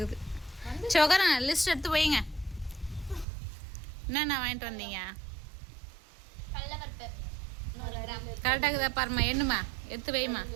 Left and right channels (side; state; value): left; drops out; at 3.2 s